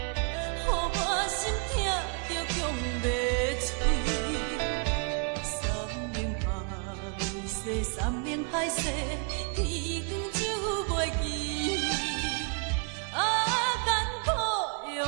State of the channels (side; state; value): left; quieter; 38.6 dB